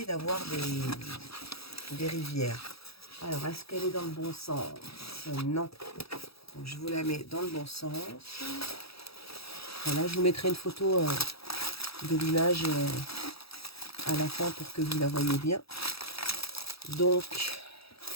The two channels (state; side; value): late; right; 0.77 ms